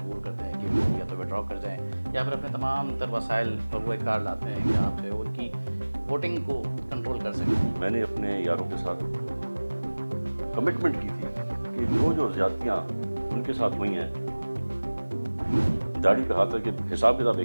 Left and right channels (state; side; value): inverted; both; correlation -1.00